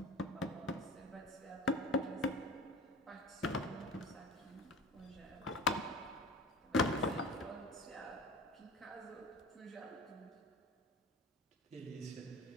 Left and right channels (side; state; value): both; normal; correlation 0.36